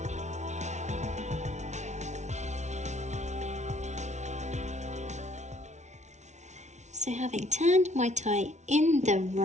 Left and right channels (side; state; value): left; late; 0.33 ms